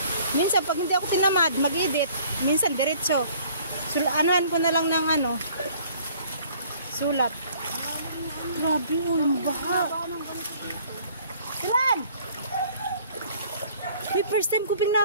Minsan, pag hindi ako tinamad, mag-edit. Minsan, diretso. Anuhan ko na lang ng ano. Sulat. Grabe, yung baha. Tilan! May first time ko ping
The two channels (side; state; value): both; inverted; correlation -0.56